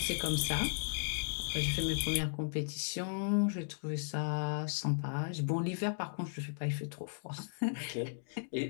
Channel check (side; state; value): right; silent; digital silence